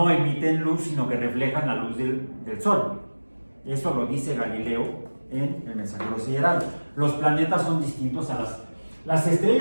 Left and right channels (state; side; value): inverted; both; correlation -1.00